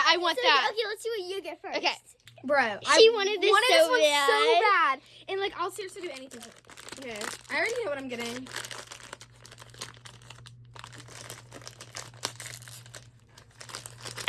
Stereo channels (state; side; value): identical; both; correlation 1.00